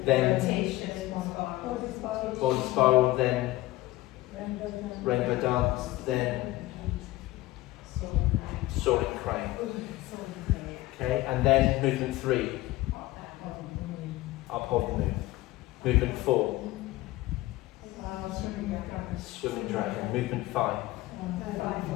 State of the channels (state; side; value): quieter; right; 17.9 dB